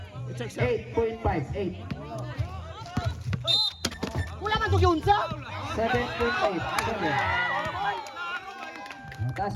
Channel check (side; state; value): both; identical; correlation 1.00